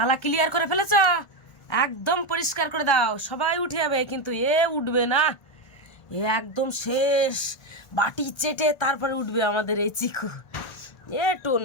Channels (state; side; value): late; right; 1.4 ms